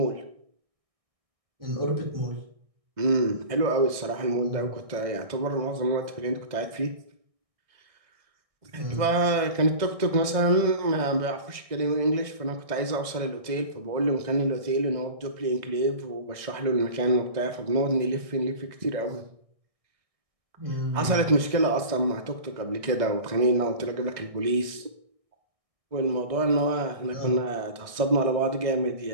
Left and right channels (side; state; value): left; late; 1.6 ms